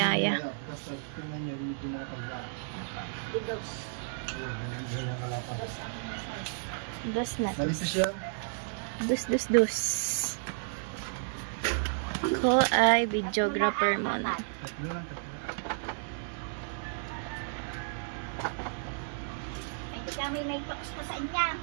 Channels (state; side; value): silent; left; digital silence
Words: Basta tingnan nyo, hindi makapal yan. Didos. Oo, ganyan kalapad. Dos aking size. Dus na. Malinis yan. Dus. Ko ay videographer muna. Tatlo lang. Hindi kami may talks ka sa inya.